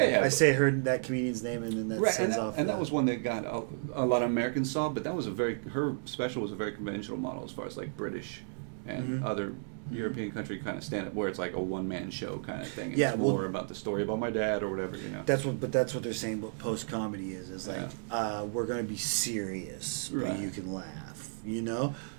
Yeah, I say her that comedian's name, and then that Right, sends and off. that was one that got a lot of Americans saw, but that was her special was a very conventional model as far as like British and other European country kind of stand up, where it's like a one man show kind of thing. And Yeah, it's well, more about the story about my dad or whatever, you know. That's what they're saying. What post comedy is like we're gonna be serious, but Right. you can laugh. You know,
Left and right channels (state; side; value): silent; left; 56 dB below the other